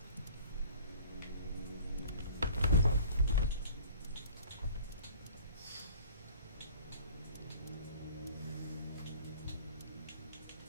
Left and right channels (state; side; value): inverted; both; correlation -0.48